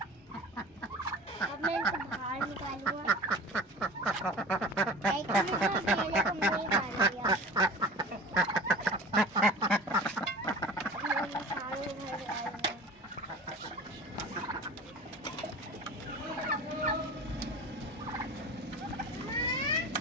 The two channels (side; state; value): both; normal; correlation 0.37